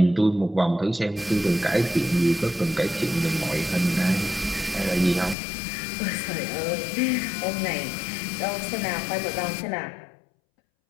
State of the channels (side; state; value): right; drops out; at 5.4 s